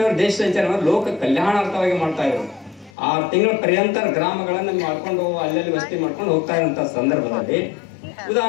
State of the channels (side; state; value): right; drops out; at 2.9 s